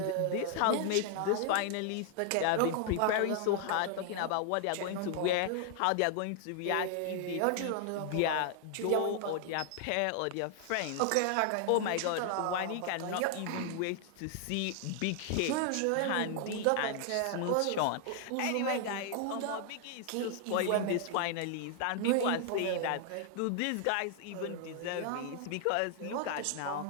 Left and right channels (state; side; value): different; both; correlation 0.00